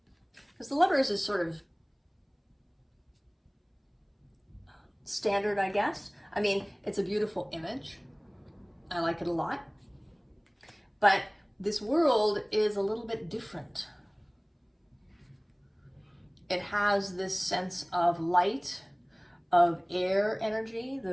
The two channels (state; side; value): identical; both; correlation 1.00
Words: Because the Lovers is sort of standard, I guess. I mean, it's a beautiful image. I like it a lot. But this World is a little bit different. It has this sense of light, of air energy.